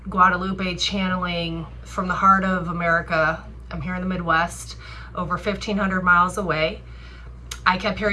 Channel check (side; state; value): both; identical; correlation 1.00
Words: Guadalupe channeling from the heart of America. I'm here in the Midwest, over 1,500 miles away. I kept